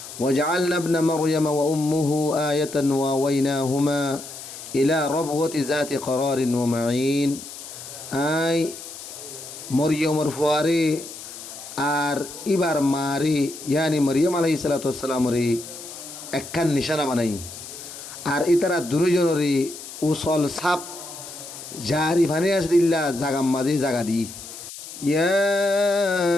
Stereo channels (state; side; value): noise; left; hiss, 13 dB below the sound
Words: وجعلنا ابن مريم وأمه آية وآويناهما إلى ربوة ذات قرار ومعين آي মরিয়মর ফুয়ারে আর ইবার মারে ইয়ানি মরিয়ম আলাইহিস সালাতু ওয়াসসালাম রে একখান নিশানা বানাই আর ইতারা দুজনরে উসল সাপ জারি ভানে আসদিল্লা জাগাম মাঝে জাগা দি ইয়া